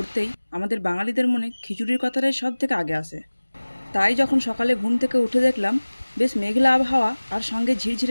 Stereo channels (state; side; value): inverted; both; correlation -1.00